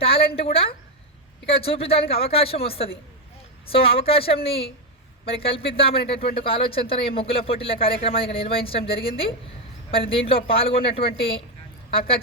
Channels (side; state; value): both; normal; correlation 0.06